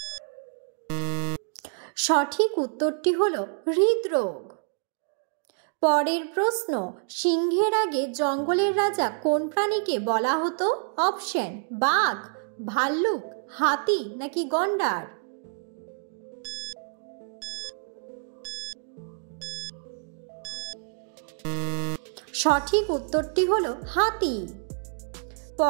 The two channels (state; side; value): silent; left; 58 dB below the other